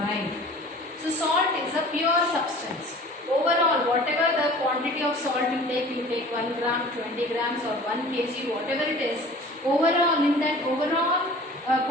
So salt is a pure substance. Overall, whatever the quantity of salt you take 1 gram, 20 grams or 1 kg, whatever it is, overall in that overall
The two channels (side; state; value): both; normal; correlation 0.44